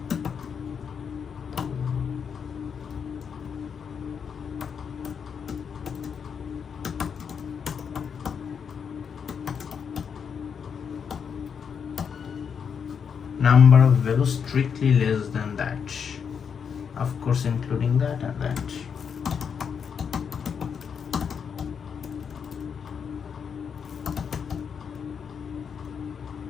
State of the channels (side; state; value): right; quieter; 6.9 dB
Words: number of values strictly less than that, of course including that and that.